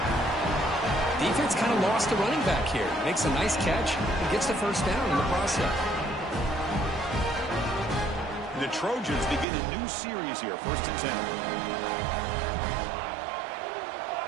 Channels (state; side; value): drops out; left; at 9.5 s